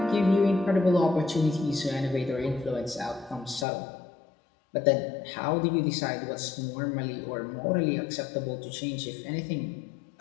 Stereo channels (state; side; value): drops out; right; at 3.7 s